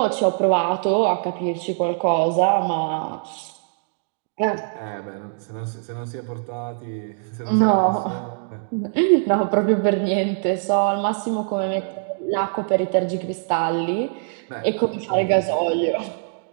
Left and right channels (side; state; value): left; silent; digital silence